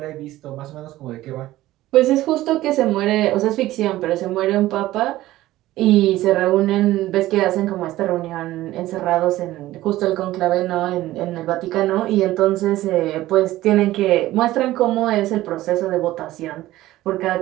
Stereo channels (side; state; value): left; quieter; 15.9 dB